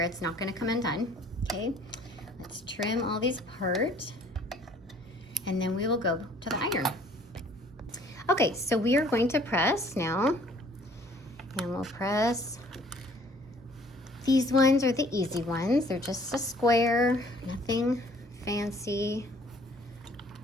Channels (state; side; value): normal; both; correlation 0.57